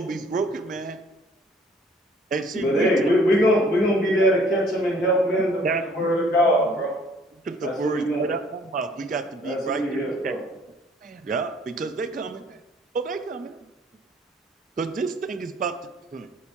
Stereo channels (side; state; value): both; normal; correlation 0.58